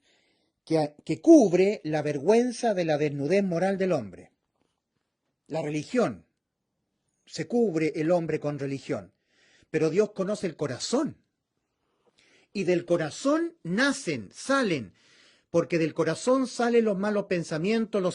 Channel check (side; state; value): both; identical; correlation 1.00